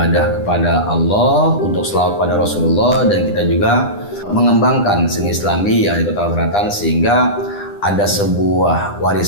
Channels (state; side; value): late; right; 9.9 ms